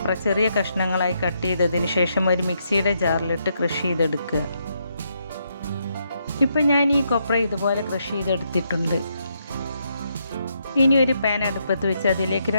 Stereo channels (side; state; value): both; inverted; correlation -0.78